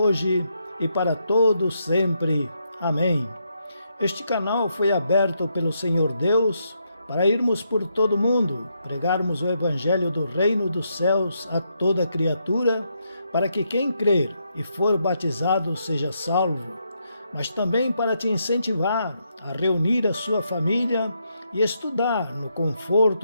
e para todos sempre. Amém. Este canal foi aberto pelo Senhor Deus para irmos por todo o mundo, pregarmos o Evangelho do Reino dos Céus a toda criatura, para que quem crer e for batizado seja salvo, mas também para te incentivar a reunir a sua família e estudar no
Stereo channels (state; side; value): inverted; both; correlation -0.79